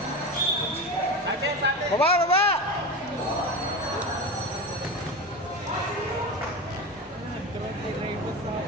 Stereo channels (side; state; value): both; normal; correlation 0.24